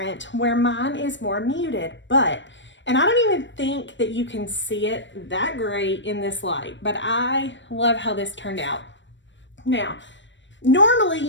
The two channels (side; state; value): right; late; 0.53 ms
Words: where mine is more muted, and I don't even think that you can see it that great in this light, but I love how this turned out. Now, normally,